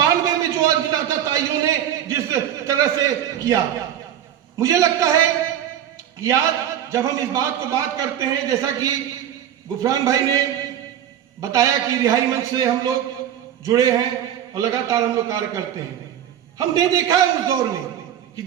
में जो अज्ञाता ताइयों ने जिस तरह से किया। मुझे लगता है कि आज जब हम इस बात को बात करते हैं, जैसा कि गुफरान भाई ने बताया कि रिहाई मंच से हम लोग जुड़े हैं और लगातार हम लोग कार्य करते हैं। हमने देखा है उस दौर में कि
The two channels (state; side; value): quieter; left; 10.4 dB